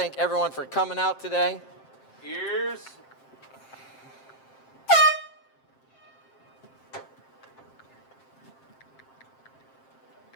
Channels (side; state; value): right; late; 7.6 ms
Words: everyone for coming out today. Ears.